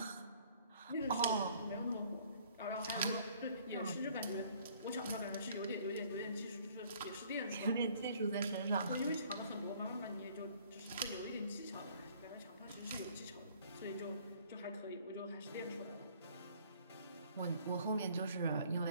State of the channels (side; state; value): both; inverted; correlation -0.58